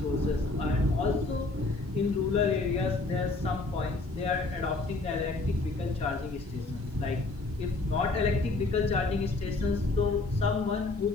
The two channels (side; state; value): right; quieter; 3.3 dB